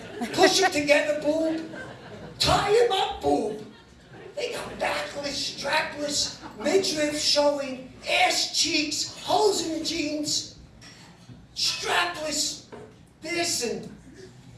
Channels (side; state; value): both; identical; correlation 1.00